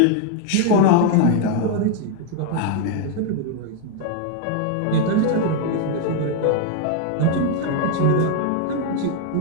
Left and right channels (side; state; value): both; different; correlation 0.00